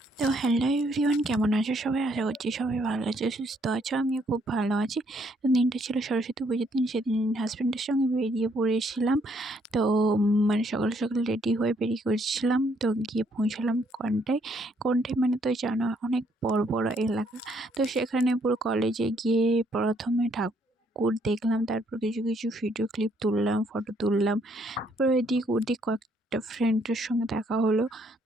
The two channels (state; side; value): normal; both; correlation 0.69